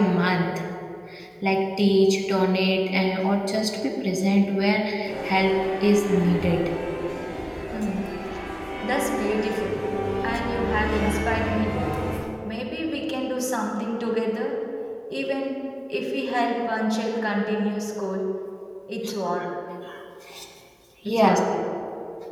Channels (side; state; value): both; identical; correlation 1.00